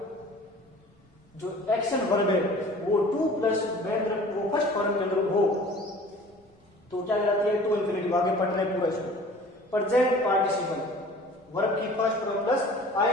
जो एक्शन वर्ब है वो टू प्लस वो फर्स्ट फॉर्म के अंदर हो तो क्या कहलाती है, टू इन्फिनेटिव। आगे पढ़ना है पूरा इसको। प्रेजेंट पार्टिसिपल, वर्ब की फर्स्ट फॉर्म प्लस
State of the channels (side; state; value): both; normal; correlation 0.46